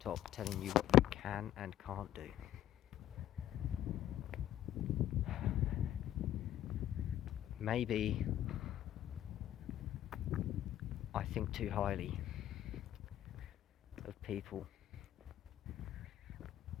telling you what you can and can't do. Maybe think too highly of people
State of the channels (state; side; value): quieter; right; 12.2 dB